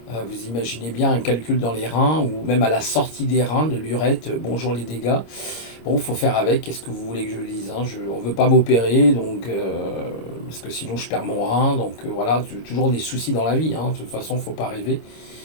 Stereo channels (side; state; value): right; late; 26 ms